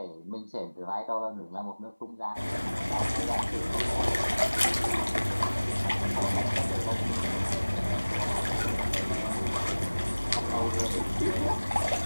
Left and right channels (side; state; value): both; inverted; correlation -1.00